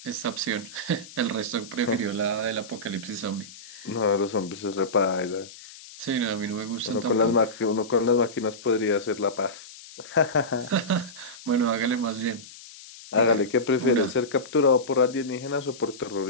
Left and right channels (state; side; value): noise; left; hiss, 17 dB below the sound